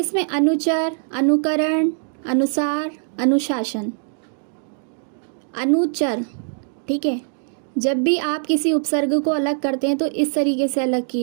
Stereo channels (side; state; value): left; silent; digital silence